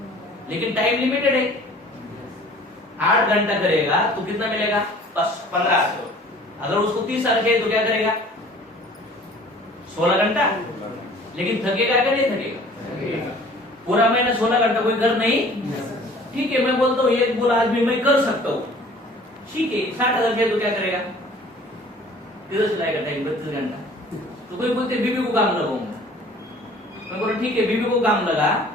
लेकिन टाइम लिमिटेड है। 8 घंटा करेगा तो कितना मिलेगा? 1500। अगर उसको 30 साल चाहिए तो क्या करेगा? 16 घंटा। लेकिन थकेगा क्या? नहीं थकेगा। पूरा महीना 16 घंटा कोई कर नहीं। ठीक है, मैं बोलता हूँ एक बोला आज भी मैं कर सकता हूँ, ठीक है, 60,000 चाहिए तो क्या करेगा? किधर चलाएगा टाइम? 32 घंटा। तो कोई बोलते बीबी को काम लगाऊंगा, मैं बोला ठीक है बीबी को काम लगा,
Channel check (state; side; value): normal; both; correlation 0.50